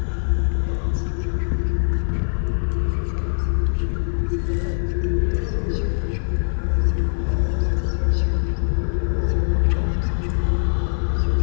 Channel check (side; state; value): right; silent; 64 dB below the other